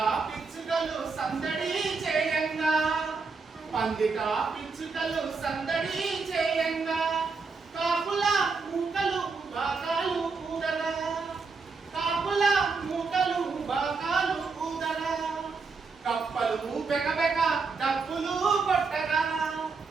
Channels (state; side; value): quieter; left; 4.6 dB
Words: పిచ్చుకలు సందడి చేయంగా పందిట పిచ్చుకలు సందడి చేయంగా కాపుల మూకలు బాకాలు ఊదరా కాపుల మూకలు బాకాలు ఊదరా కప్పలు బెకబెక డప్పులు కొట్టగా